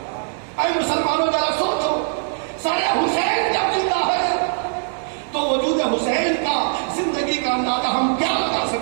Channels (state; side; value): silent; left; digital silence